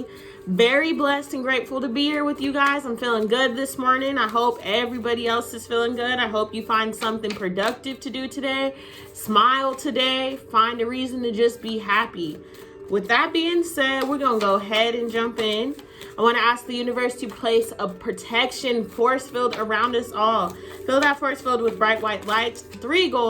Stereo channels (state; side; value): identical; both; correlation 1.00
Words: Very blessed and grateful to be here with you guys. I'm feeling good this morning. I hope everybody else is feeling good. I hope you find something productive to do today. Smile today. Find a reason to just be happy. With that being said, we're going to go ahead and jump in. I want to ask the universe to place a protection force field around us all. Fill that force field with bright white lights, 3